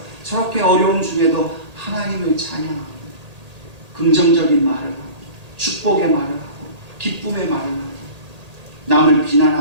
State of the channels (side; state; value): left; late; 1.8 ms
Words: 저렇게 어려움 중에도 하나님을 찬양하고 긍정적인 말을 하고 축복의 말을 하고 기쁨의 말을 하고 남을